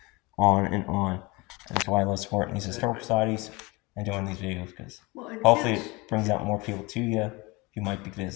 on and on. And that's why I love supporting these historical societies and doing these videos, because Well, and hopefully kids, it brings out more people to you who might be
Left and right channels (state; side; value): quieter; right; 24.8 dB